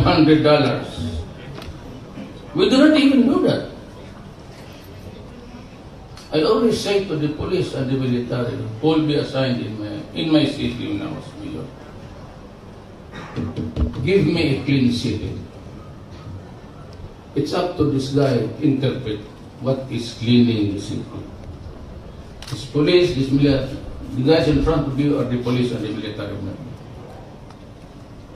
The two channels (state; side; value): identical; both; correlation 1.00